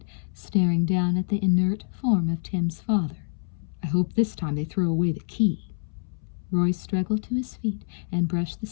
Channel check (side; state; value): right; silent; 61 dB below the other